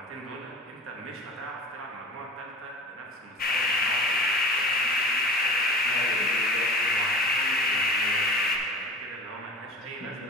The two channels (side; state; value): both; normal; correlation 0.37